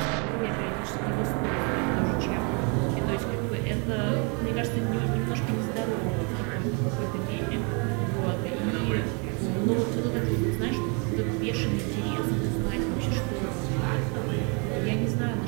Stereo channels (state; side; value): quieter; left; 34.3 dB